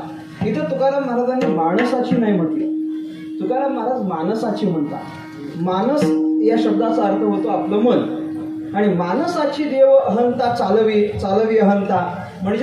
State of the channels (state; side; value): identical; both; correlation 1.00